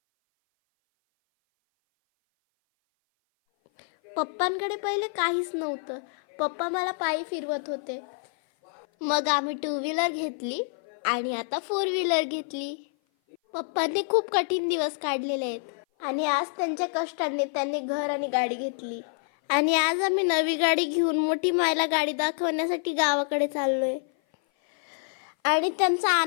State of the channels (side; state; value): right; silent; 56 dB below the other